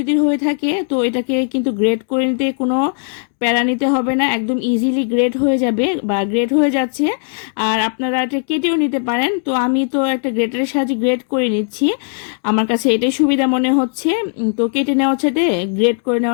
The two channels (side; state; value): right; silent; 68 dB below the other